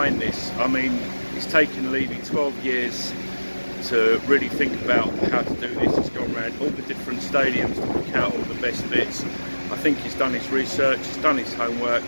this. I mean, it's taken Levy 12 years to really think about how to do this. He's gone around all the different stadiums to pick out all the best bits. I think he's done his research, he's done his homework,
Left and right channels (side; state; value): both; inverted; correlation -1.00